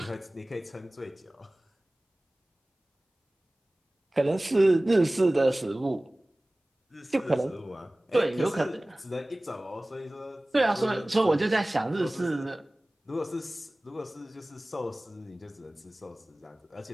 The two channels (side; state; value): both; normal; correlation 0.98